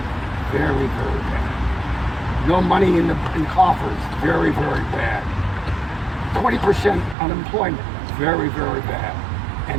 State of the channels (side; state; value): left; drops out; at 7.2 s